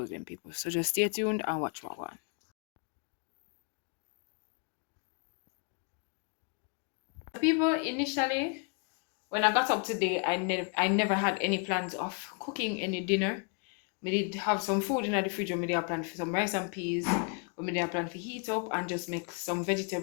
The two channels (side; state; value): right; quieter; 38.9 dB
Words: them people. So just stay tuned and watch what one. People, initially when I got up today, I never had any plans of cooking any dinner. Me did have some food in the fridge. Me did have plan for some rice and peas. Or me did have plan for heat up and just make some